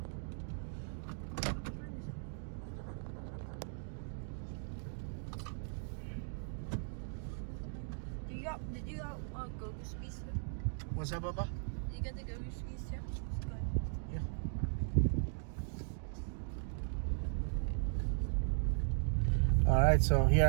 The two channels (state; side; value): silent; left; digital silence